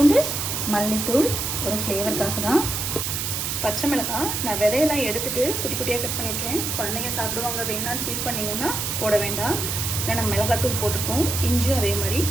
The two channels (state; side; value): noise; right; hiss, 2 dB below the sound